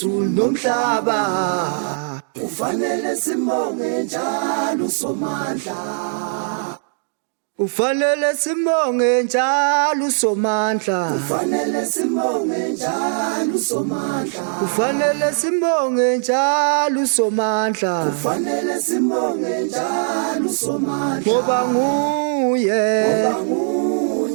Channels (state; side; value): silent; left; digital silence